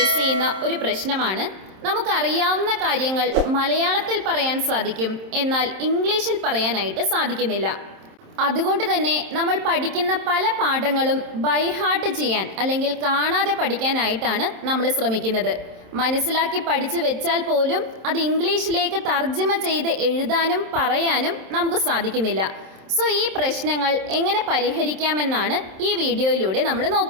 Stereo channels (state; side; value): late; left; 27 ms